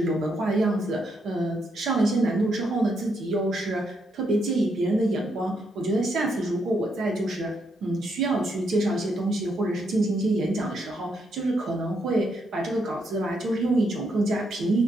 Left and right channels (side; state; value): both; normal; correlation 0.77